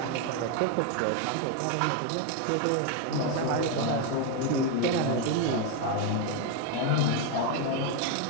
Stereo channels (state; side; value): different; both; correlation 0.01